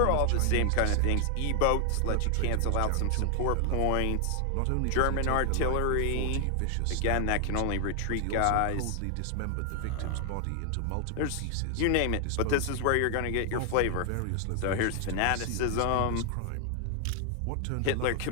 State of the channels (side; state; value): both; different; correlation 0.00